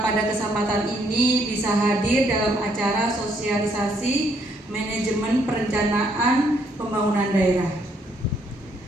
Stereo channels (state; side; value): normal; both; correlation 0.70